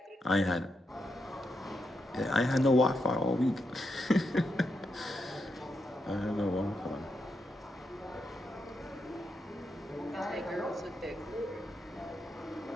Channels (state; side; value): normal; both; correlation 0.82